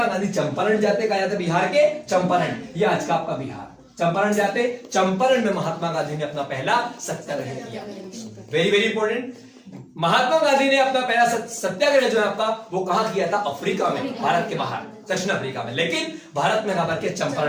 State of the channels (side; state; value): both; identical; correlation 1.00